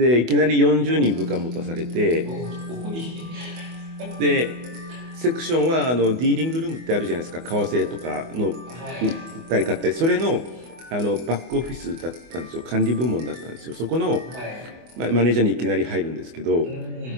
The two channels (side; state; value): left; late; 24 ms